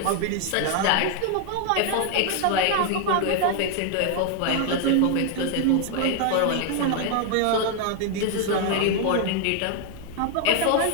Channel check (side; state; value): both; different; correlation 0.00